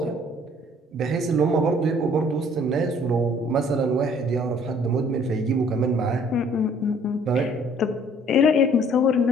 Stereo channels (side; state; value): both; normal; correlation 0.58